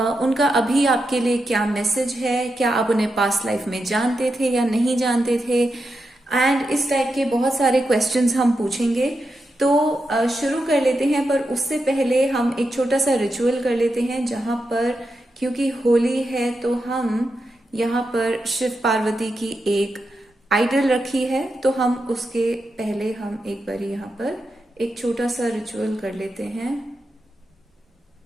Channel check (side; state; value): both; normal; correlation 0.87